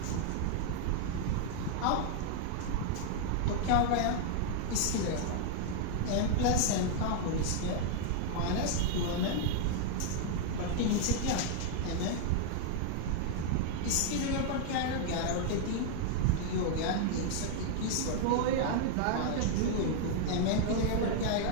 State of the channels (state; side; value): different; both; correlation -0.01